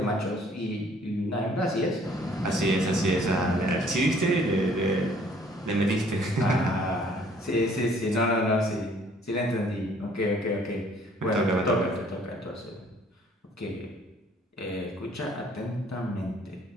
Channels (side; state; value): both; normal; correlation 0.59